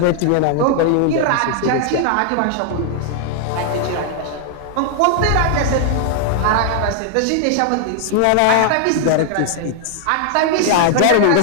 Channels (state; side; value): different; both; correlation 0.00